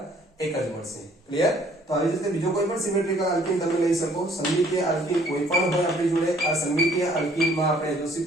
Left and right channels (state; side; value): normal; both; correlation 0.60